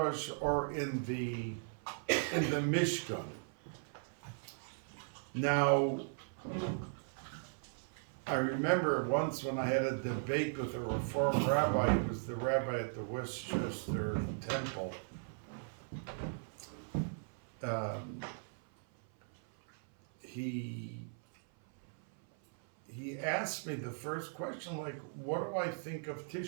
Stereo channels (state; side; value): silent; left; 53 dB below the other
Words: or in the Mishkan. Now, I remember once when I had a debate with a Reform rabbi. He was the rabbi at the Westchester Temple. He asked me the first question, like, what do I think of